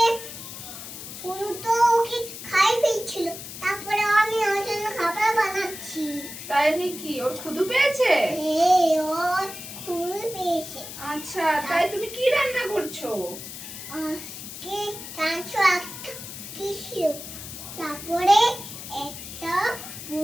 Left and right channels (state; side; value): noise; left; hiss, 11 dB below the sound